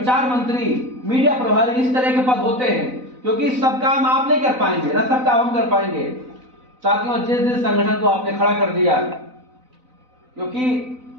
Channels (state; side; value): late; left; 4.0 ms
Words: मंत्री, मीडिया प्रभारी, इस तरह के पद होते हैं, क्योंकि सब काम आप नहीं कर पाएंगे ना, सब काम हम कर पाएंगे। साथियों जिस संगठन को आपने खड़ा कर दिया, क्योंकि